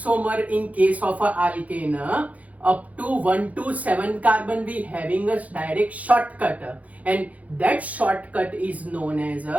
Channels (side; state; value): left; late; 0.070 ms